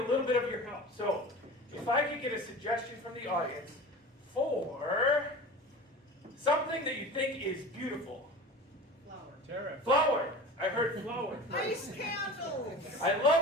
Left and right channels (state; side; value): normal; both; correlation 0.35